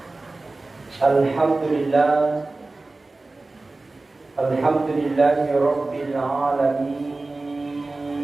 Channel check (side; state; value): left; quieter; 3.2 dB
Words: Alhamdulillah, alhamdulillahi rabbil alamin.